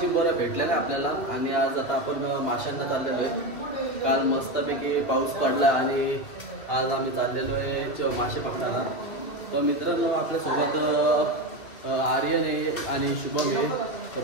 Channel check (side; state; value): right; late; 2.5 ms